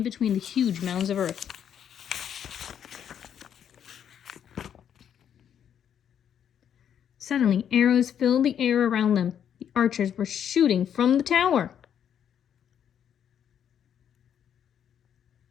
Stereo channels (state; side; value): quieter; right; 9.0 dB